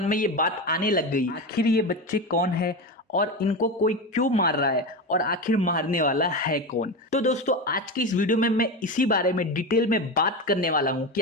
में ये बात आने लग गई, आखिर ये बच्चे कौन है और इनको कोई क्यों मार रहा है और आखिर मारने वाला है कौन। तो दोस्तों आज की इस वीडियो में मैं इसी बारे में डिटेल में बात करने वाला हूं कि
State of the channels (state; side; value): normal; both; correlation 0.20